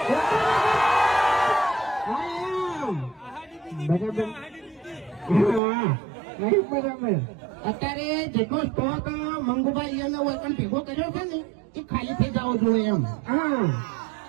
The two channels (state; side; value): drops out; left; at 5.6 s